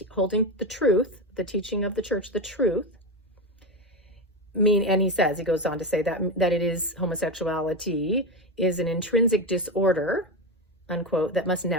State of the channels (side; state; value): both; normal; correlation 0.16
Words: holding the truth, the teaching of the church, the truth. And he goes on to say that it is homosexuality is an intrinsic disorder, unquote, that must